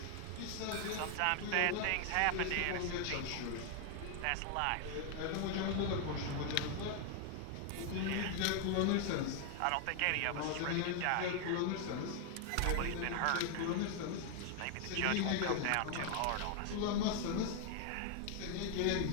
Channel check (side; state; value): both; different; correlation 0.00